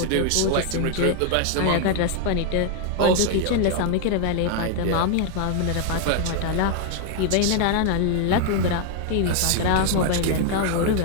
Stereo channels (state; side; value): different; both; correlation 0.00